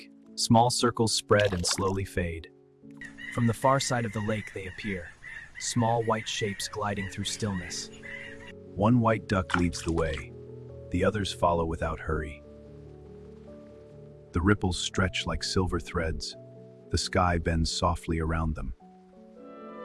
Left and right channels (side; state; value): both; identical; correlation 1.00